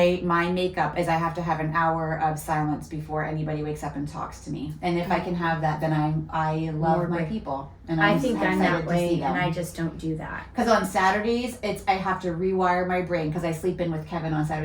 makeup is I have to have an hour of silence before anybody wakes up and talks to me. And if I can have that, then I love More my break. people. And I think I'm excited that to see way, them. and I just don't do that. Because on Saturdays, I have to rewire my brain because I sleep in with Kevin on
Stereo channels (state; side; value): identical; both; correlation 1.00